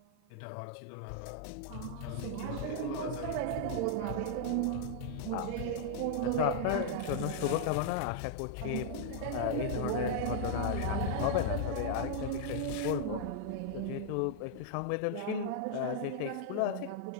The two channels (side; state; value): both; different; correlation -0.01